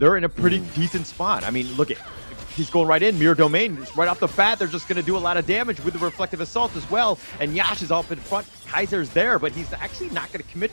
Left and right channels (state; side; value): inverted; both; correlation -1.00